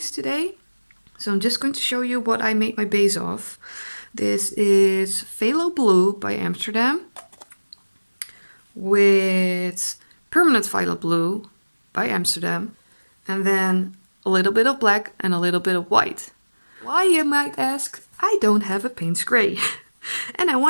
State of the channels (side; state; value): both; inverted; correlation -1.00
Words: today. So I'm just going to show you what I made my base of. This is Phalo Blue by Amsterdam with permanent Phalo Blue by Amsterdam, and then a little bit of black and a little bit of white. Why, you might ask? I don't have a paint spray and I